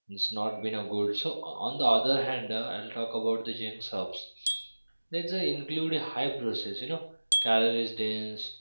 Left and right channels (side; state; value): both; inverted; correlation -1.00